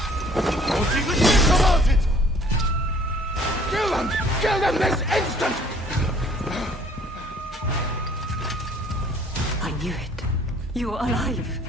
Kill them! Kill them this instant! I knew it. You are alive.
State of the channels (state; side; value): normal; both; correlation 0.57